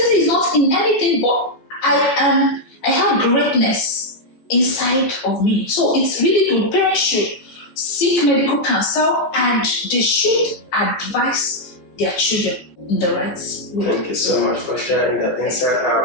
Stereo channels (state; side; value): late; right; 14 ms